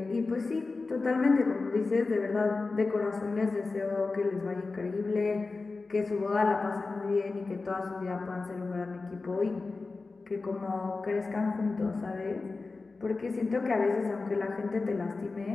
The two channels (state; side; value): quieter; right; 3.8 dB